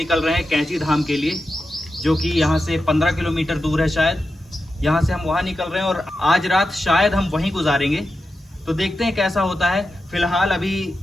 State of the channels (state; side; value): normal; both; correlation 0.90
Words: रहे हैं कैंची धाम के लिए, जो कि यहाँ से 15 किलोमीटर दूर है शायद। यहाँ से हम वहाँ निकल रहे हैं और आज रात शायद हम वहीं गुजारेंगे, तो देखते हैं कैसा होता है। फिलहाल अभी